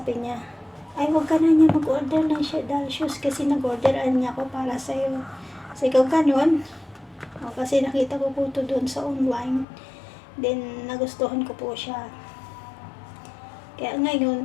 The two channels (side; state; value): right; drops out; at 9.7 s